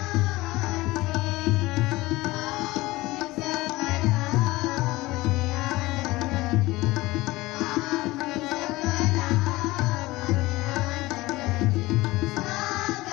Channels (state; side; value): quieter; right; 19.8 dB